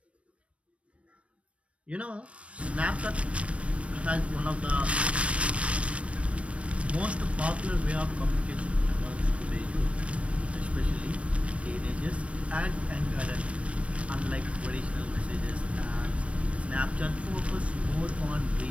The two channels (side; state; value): left; late; 0.062 ms